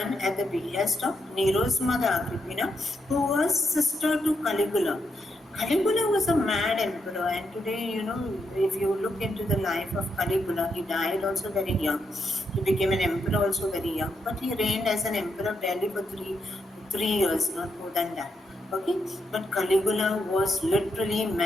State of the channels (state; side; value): normal; both; correlation 0.80